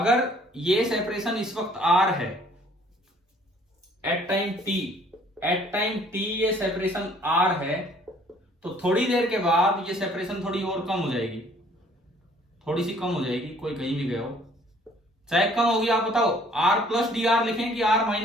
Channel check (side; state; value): both; normal; correlation 0.58